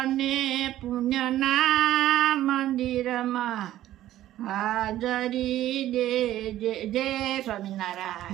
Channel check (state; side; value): quieter; left; 13.6 dB